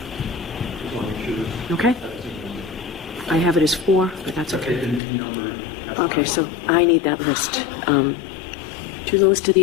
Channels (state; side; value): drops out; right; at 5.0 s